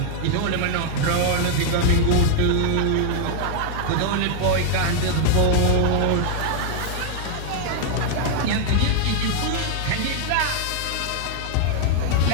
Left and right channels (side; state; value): both; different; correlation 0.00